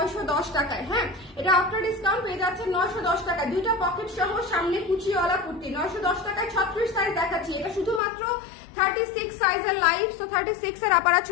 টাকায়। হ্যাঁ, এটা আফটার ডিসকাউন্ট পেয়ে যাচ্ছেন 910 টাকা, দুইটা পকেট সহ, সামনে কুচিওয়ালা কুর্তি 910 টাকায়। 36 সাইজ দেখাচ্ছি, এটা শুধুমাত্র 36 সাইজের লাইভ। তো 36 এর আপারা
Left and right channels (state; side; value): drops out; right; at 8.0 s